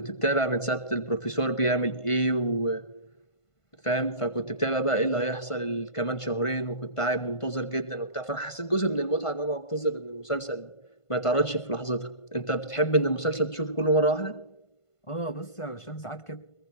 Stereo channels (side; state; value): right; late; 1.5 ms